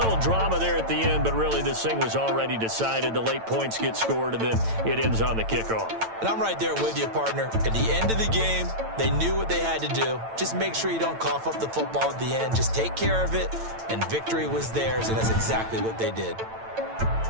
drama there at the end, but really this thing was already decided. The late points get scored, and then it ends on the kickoff. And I'm right there with you, partner. At the end of the game, they knew what they had to do. Just make sure you don't cough up the football at the end. Just take care of it, and victory was theirs, and that's exactly what they did.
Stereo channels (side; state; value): left; late; 9.0 ms